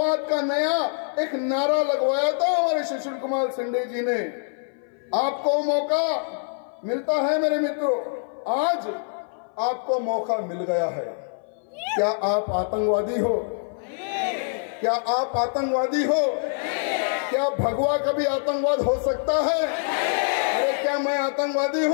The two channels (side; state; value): right; silent; 58 dB below the other